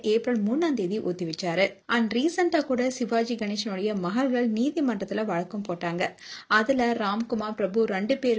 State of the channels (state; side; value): identical; both; correlation 1.00